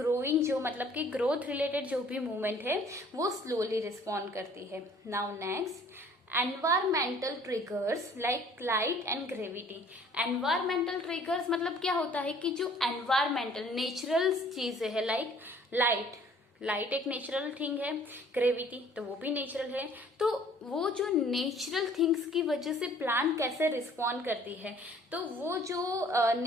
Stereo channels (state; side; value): normal; both; correlation 0.55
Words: जो मतलब कि ग्रोथ रिलेटेड जो भी मूवमेंट है वो स्लोली रिस्पॉन्ड करती है। Now next, environmental triggers like light and gravity. Environmental triggers मतलब क्या होता है कि जो एनवायरमेंटल नेचुरल चीजें है, लाइक लाइट एक नेचुरल थिंग है, ग्रेविटी तो वो भी नेचुरल है, तो वो जो नेचुरल थिंग्स की वजह से प्लांट कैसे रिस्पॉन्ड करती है, तो वो जो